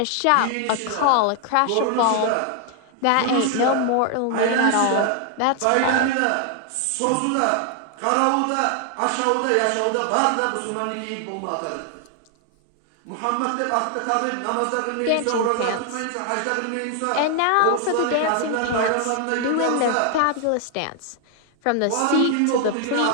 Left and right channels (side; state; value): both; different; correlation 0.00